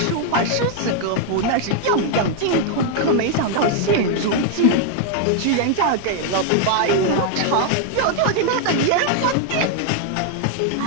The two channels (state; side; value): different; both; correlation 0.00